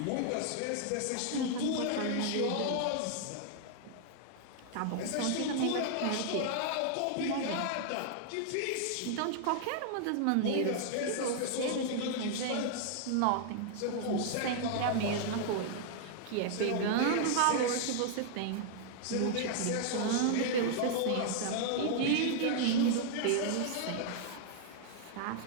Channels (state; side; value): different; both; correlation 0.00